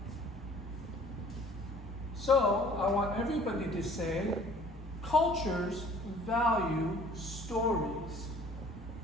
So I want everybody to say, cultures value stories.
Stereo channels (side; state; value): both; normal; correlation 0.52